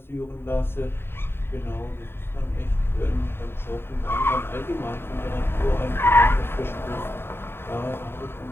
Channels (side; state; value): right; late; 0.11 ms